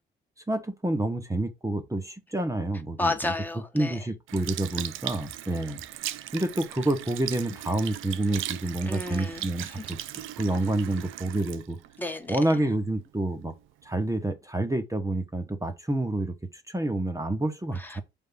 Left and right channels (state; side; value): normal; both; correlation 0.82